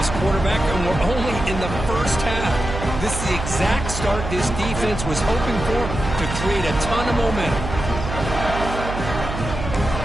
quarterback, and we're only in the first half. This is the exact start this defense was hoping for to create a ton of momentum.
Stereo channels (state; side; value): noise; right; hum, 6 dB below the sound